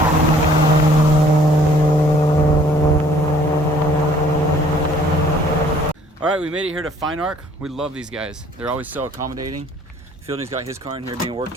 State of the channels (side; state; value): both; normal; correlation 0.58